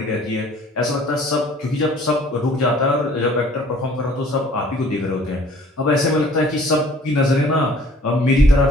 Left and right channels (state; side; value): normal; both; correlation 0.54